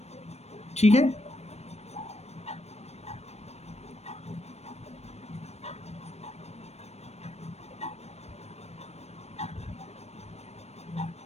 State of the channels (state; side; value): late; right; 0.31 ms